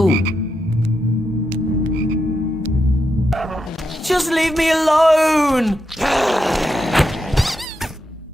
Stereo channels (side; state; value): both; normal; correlation 0.84